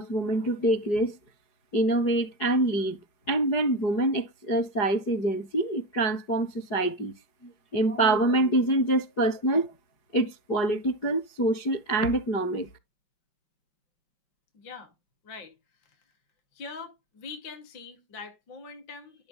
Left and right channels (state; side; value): late; right; 4.8 ms